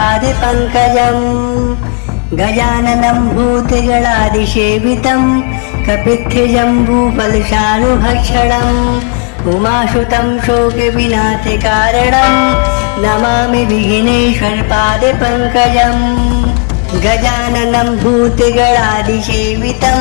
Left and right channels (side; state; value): right; quieter; 36.6 dB